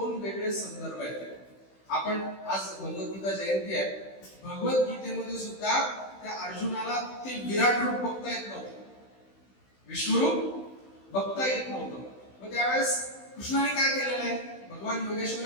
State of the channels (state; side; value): late; right; 16 ms